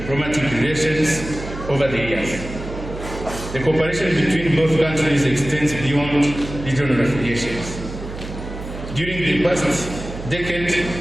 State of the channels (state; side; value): noise; right; hum, 10 dB below the sound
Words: relations over the years. The cooperation between both countries extends beyond regional affiliations. During the past decade,